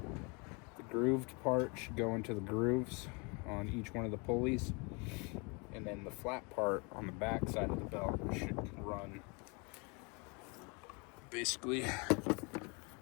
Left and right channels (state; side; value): quieter; right; 31.5 dB